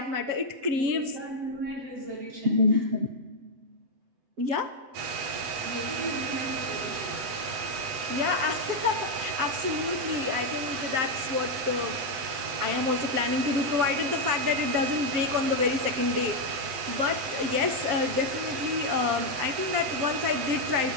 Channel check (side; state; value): left; late; 7.7 ms